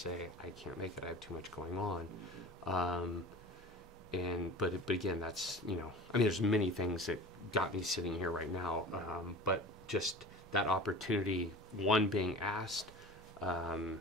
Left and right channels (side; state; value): both; normal; correlation 0.38